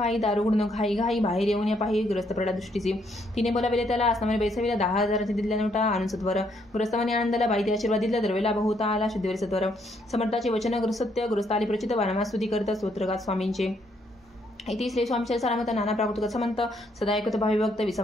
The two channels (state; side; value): normal; both; correlation 0.72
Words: दारू गुण घाई घाई बाहेर येऊन या पाही ग्रस्त प्रडा दृष्टीची. तिने बोलाविले त्याला, असनामाने बैसविला, 10,000 दिल्या नोटा आणून सत्वर. ग्रस्तमाने आनंदाला बाईते आशीर्वाद दिला, द्रव्य लाभ होता आला शुद्धीवर सत्वर. समर्थाचे वचन सत्य ग्रस्त आली प्रचित, वारंवार स्तुती करत स्तोत्रगात स्वामींचे. इति श्री स्वामीचे सारामत नाना प्राकृत समंत सदा ऐकत भावी भक्त